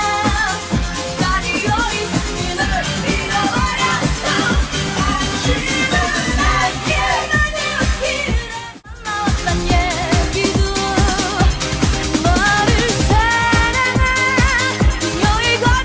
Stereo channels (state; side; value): identical; both; correlation 1.00